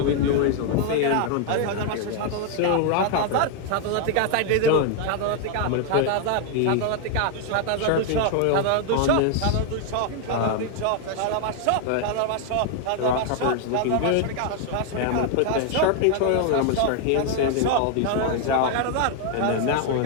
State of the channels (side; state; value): both; different; correlation 0.00